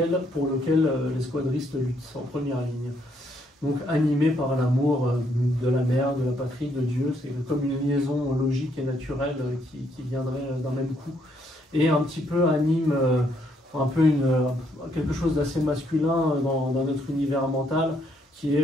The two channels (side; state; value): both; normal; correlation 0.72